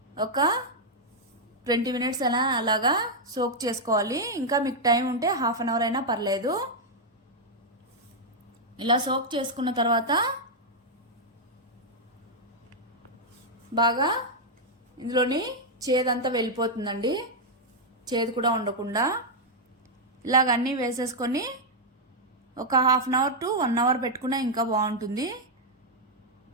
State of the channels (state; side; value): normal; both; correlation -0.03